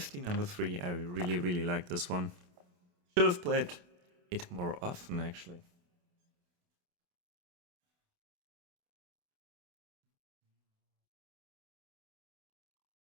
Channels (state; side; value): late; left; 28 ms